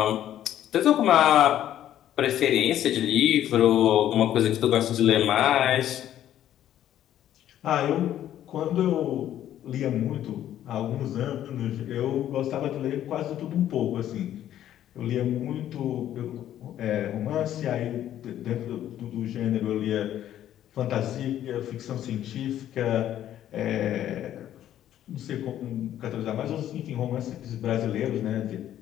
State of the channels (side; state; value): right; quieter; 11.6 dB